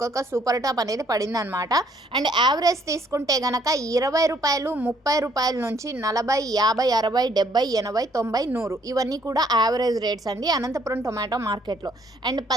సూపర్ టాప్ అనేది పడింది అనమాట. అండ్ యావరేజ్ తీసుకుంటే గనక 20 రూపాయలు, 30 రూపాయల నుంచి 40, 50, 60, 70, 80, 90, 100 ఇవన్నీ కూడా యావరేజ్ రేట్స్ అండి అనంతపురం టొమాటో మార్కెట్లో. అండ్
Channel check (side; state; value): both; normal; correlation 0.65